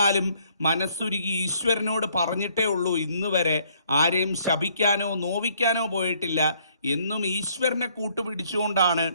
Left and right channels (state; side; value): inverted; both; correlation -0.65